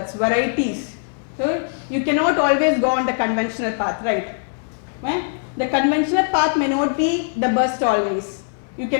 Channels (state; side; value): silent; right; digital silence